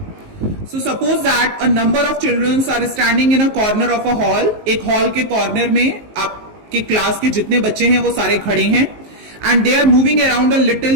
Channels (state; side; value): late; left; 19 ms